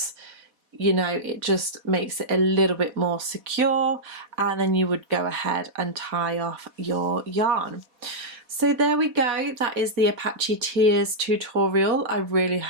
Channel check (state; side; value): late; left; 4.1 ms